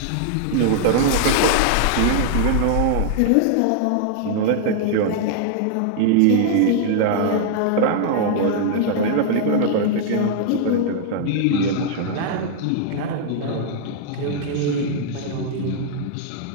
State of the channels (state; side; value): different; both; correlation -0.01